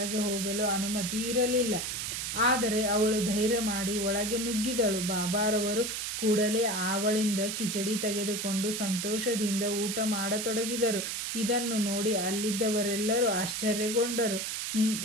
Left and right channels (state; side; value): noise; right; hiss, 3 dB below the sound